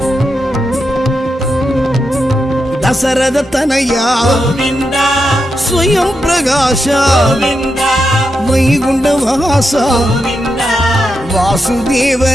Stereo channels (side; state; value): both; normal; correlation 0.86